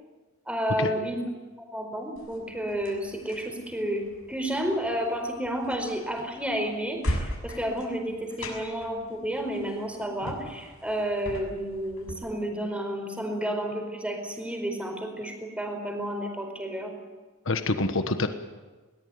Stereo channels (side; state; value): both; normal; correlation 0.57